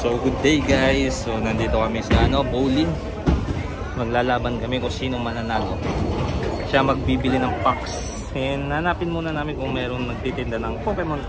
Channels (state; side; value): identical; both; correlation 1.00